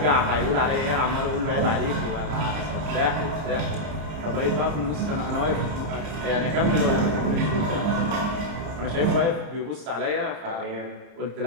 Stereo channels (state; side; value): late; left; 30 ms